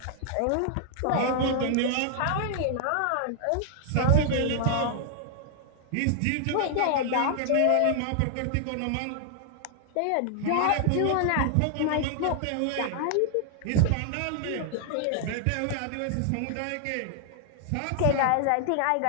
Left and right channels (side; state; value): both; different; correlation 0.00